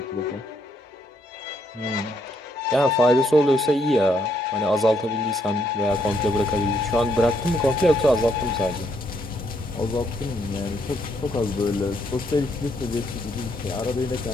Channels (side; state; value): both; normal; correlation 0.73